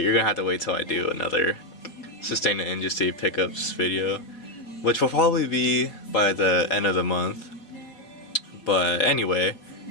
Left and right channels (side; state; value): right; late; 4.4 ms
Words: gonna have to wait till I do another Sustain the Industry pickups video, which will probably be by the end of the month. But anyway,